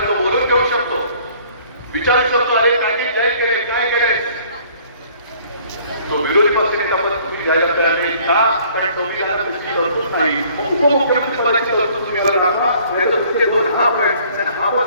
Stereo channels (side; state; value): both; inverted; correlation -0.57